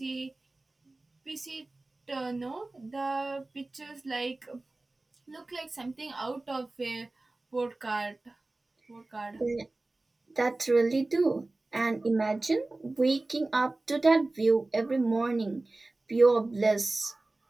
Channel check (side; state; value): left; quieter; 3.0 dB